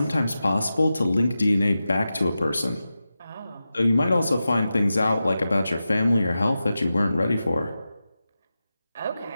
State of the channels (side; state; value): both; inverted; correlation -0.92